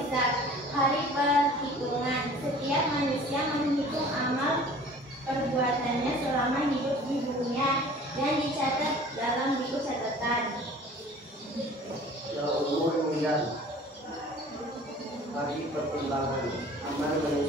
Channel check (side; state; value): both; normal; correlation 0.46